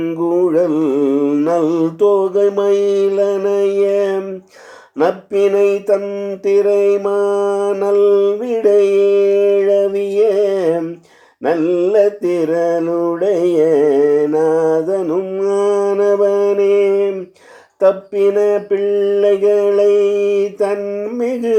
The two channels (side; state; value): both; identical; correlation 1.00